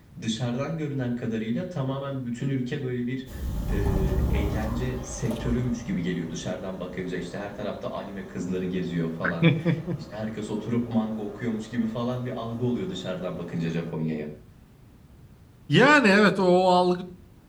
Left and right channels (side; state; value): both; identical; correlation 1.00